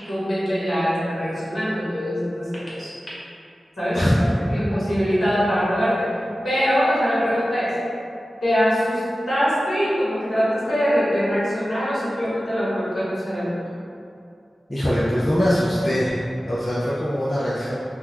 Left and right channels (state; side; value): normal; both; correlation 0.95